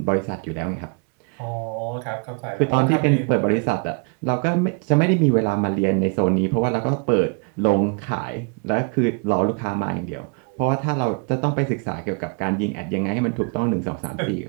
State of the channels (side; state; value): left; quieter; 35.6 dB